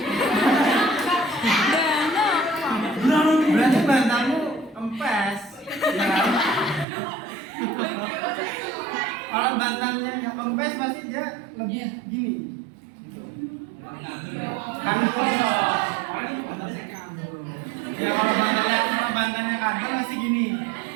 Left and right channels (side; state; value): left; drops out; at 6.9 s